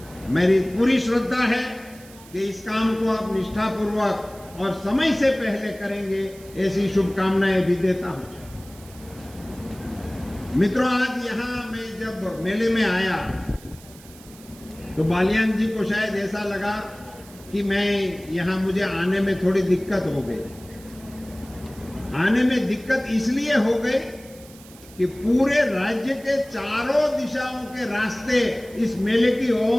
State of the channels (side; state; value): right; noise; hiss, 22 dB below the sound